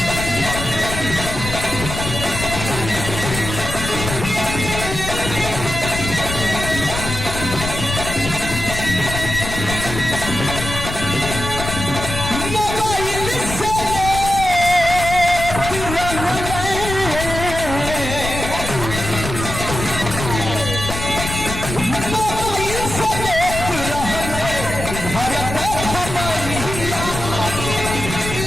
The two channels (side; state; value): left; noise; rumble, 6 dB below the sound